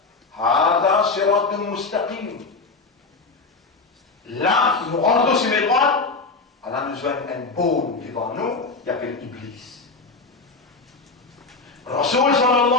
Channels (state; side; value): quieter; right; 4.0 dB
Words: Hada siratun mustaqim. Là, nous rentrons sur mes droits, Allah nous donne un baume devant nous, il appelle Iblis. Rasoul